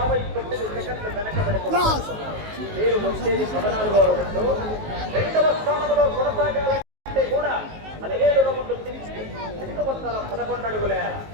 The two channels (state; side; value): late; left; 19 ms